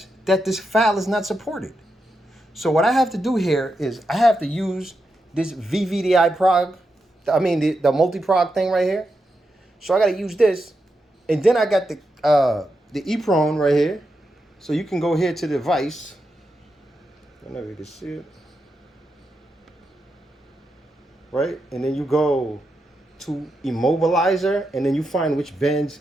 that this file is not supported. So what I have to do here is I have to use this VVDI prog, the multi-prog thing right here. So I got to use this, and then I got the EEPROM right here. So you can go here to the device. I don't know if you can see it, right? And then you go to immobilizer, and then you find which bends.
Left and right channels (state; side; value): normal; both; correlation 0.86